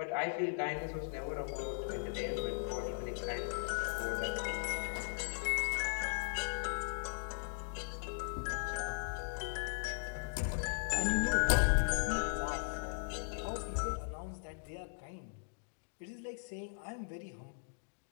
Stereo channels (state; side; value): silent; right; digital silence